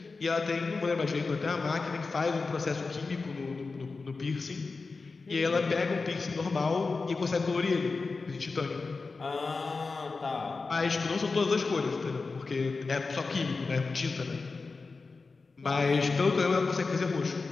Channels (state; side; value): quieter; right; 4.1 dB